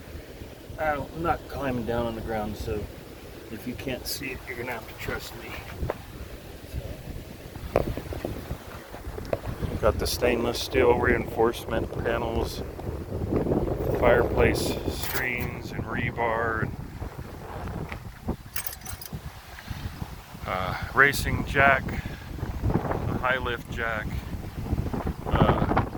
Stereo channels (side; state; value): both; identical; correlation 1.00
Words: I'm not climbing down on the ground, so if you can't see it, you're gonna have to trust me. Got the stainless steel reinforcement panels, fireplace screens and rebar, and racing jack, a high lift jack. I